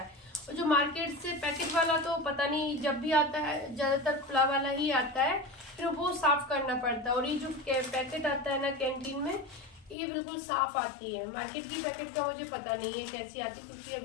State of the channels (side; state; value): right; drops out; at 10.0 s